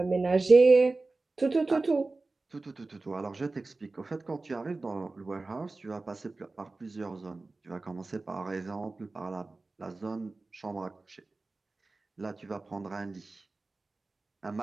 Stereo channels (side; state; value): left; quieter; 3.4 dB